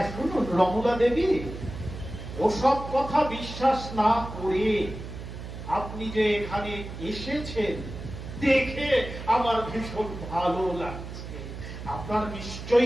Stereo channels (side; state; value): right; noise; hum, 10 dB below the sound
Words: শুনুন রমলা দেবী, ওসব কথা বিশ্বাস না করে আপনি যে এখানে এসেছেন দেখে আমার ভীষণ ভালো লাগছে। আপনার